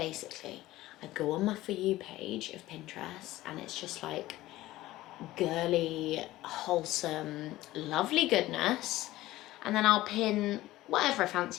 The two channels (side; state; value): right; quieter; 16.6 dB